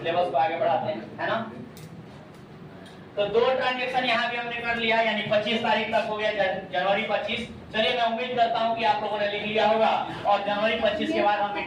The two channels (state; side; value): identical; both; correlation 1.00